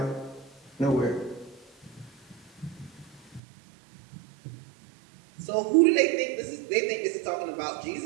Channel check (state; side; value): drops out; left; at 3.4 s